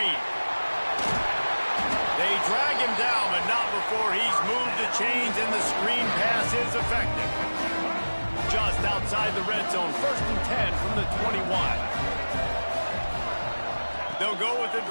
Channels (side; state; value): both; inverted; correlation -1.00